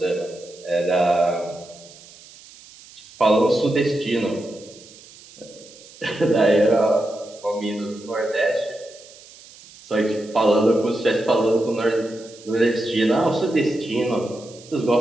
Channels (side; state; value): right; noise; hiss, 21 dB below the sound